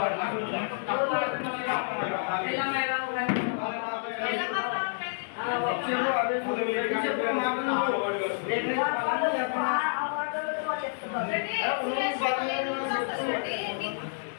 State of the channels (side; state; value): right; silent; digital silence